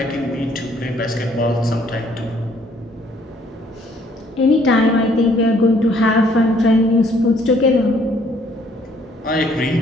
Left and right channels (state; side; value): normal; both; correlation 0.63